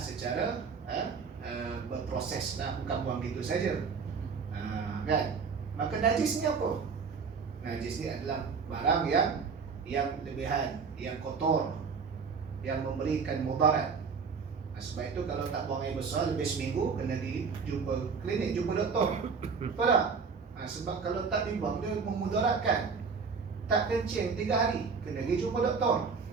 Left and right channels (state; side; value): quieter; left; 5.5 dB